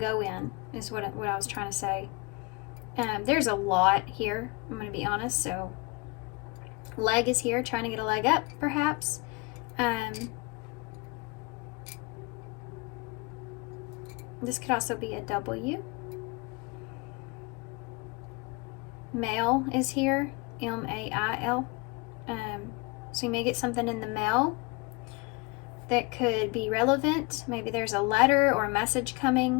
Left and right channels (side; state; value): right; quieter; 27.6 dB